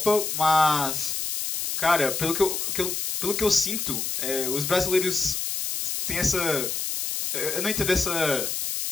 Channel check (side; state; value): left; noise; hiss, 2 dB below the sound